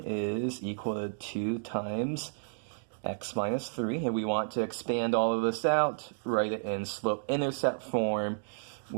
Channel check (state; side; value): silent; left; digital silence